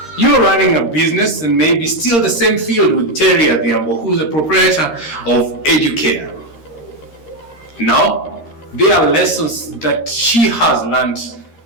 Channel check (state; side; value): late; right; 13 ms